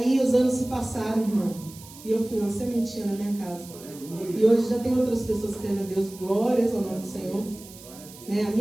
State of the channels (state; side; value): noise; right; hiss, 18 dB below the sound